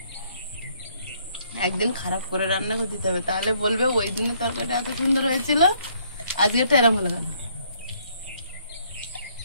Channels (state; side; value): inverted; both; correlation -0.67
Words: একদিন খারাপ করে রান্না করে দিতে হবে, তাহলে বলবে ওই দিনের তরকারিটা এত সুন্দর হয়েছিল, আজকেরটা এরম হলো কেন।